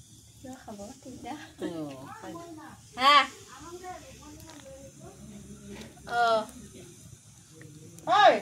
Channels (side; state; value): both; identical; correlation 1.00